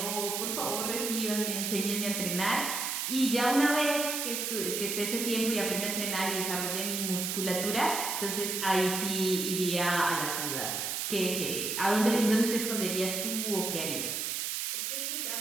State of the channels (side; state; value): right; noise; hiss, 1 dB below the sound